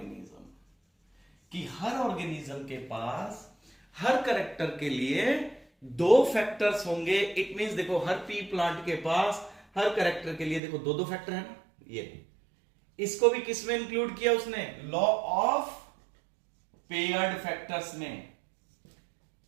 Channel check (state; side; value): drops out; left; at 10.6 s